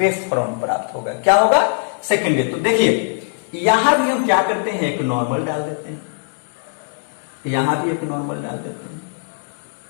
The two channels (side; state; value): right; silent; 66 dB below the other